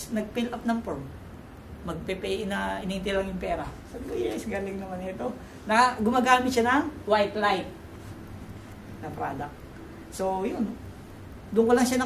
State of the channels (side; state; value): both; identical; correlation 1.00